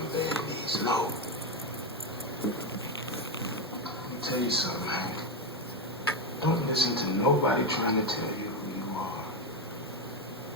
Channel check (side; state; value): both; normal; correlation 0.10